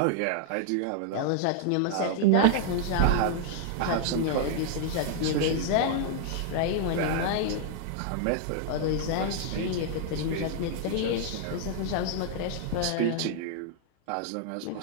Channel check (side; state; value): both; different; correlation -0.01